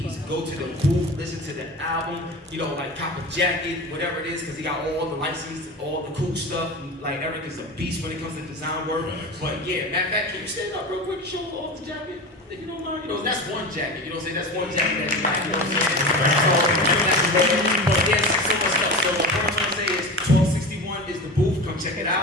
go to the booth, listen to the album, like cop a jacket, whatever it is, because he got all the license, all the cool stuff. Like Eric is a beast when it comes to design work. But yeah, matter of fact, can you stand up real quick and show off the jacket? If you don't mind, that's one jacket. That's one jacket that you like. But there's so much stuff. So what I'm trying to say is 1261 is the booth. Come check it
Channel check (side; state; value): both; normal; correlation 0.29